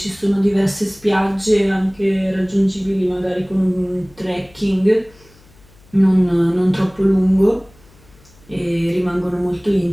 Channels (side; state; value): left; noise; hum, 28 dB below the sound